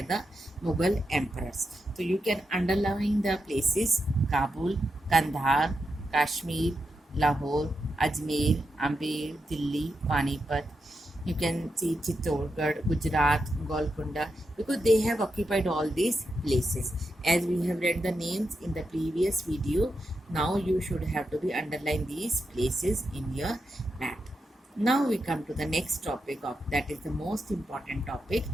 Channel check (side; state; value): both; normal; correlation 0.86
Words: the Mughal emperors. So you can underline the places: Kabul, Kandahar, Kashmir, Lahore, Ajmer, Amber, Delhi, Panipat. You can see Chittorgarh, Gujarat, Golconda, because they have occupied all these places. As we have read the names in the previous video, now you should have to be underline these places in your map. Now we come to the next topic of that is the most important topic,